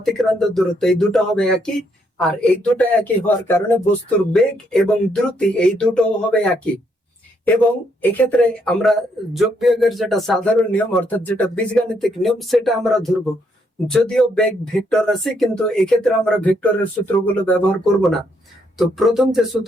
দূরত্ব এই দুটো হবে একই। আর এই দুটো একই হওয়ার কারণে বস্তুর বেগ এবং দ্রুতি এই দুটো হবে একই। এবং এক্ষেত্রে আমরা যোগ বিয়োগের যেটা সাধারণ নিয়ম অর্থাৎ যেটা বীজগাণিতিক নিয়ম সেটা আমরা ধরবো। যদিও বেগ ভেক্টর আছে, কিন্তু এক্ষেত্রে আমরা ভেক্টরের সূত্রগুলো ব্যবহার করব না। তো প্রথম যে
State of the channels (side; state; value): both; normal; correlation 0.74